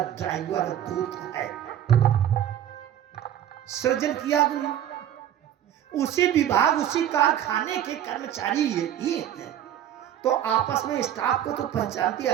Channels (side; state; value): left; quieter; 10.7 dB